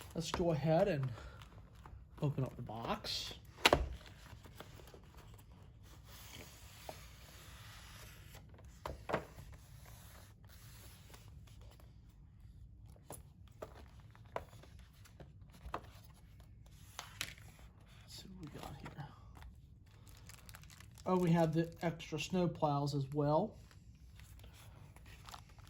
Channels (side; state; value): both; identical; correlation 1.00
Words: let's go ahead and open up the box. Let's see what we got here. Oh, we have the extra snow plows as well.